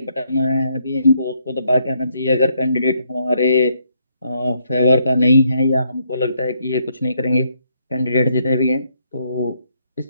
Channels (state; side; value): inverted; both; correlation -0.74